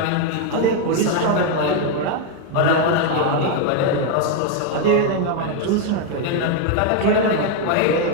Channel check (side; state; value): both; different; correlation 0.01